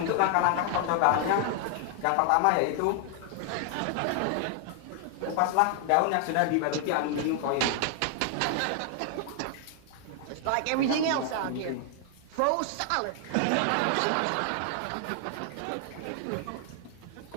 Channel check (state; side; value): different; both; correlation 0.00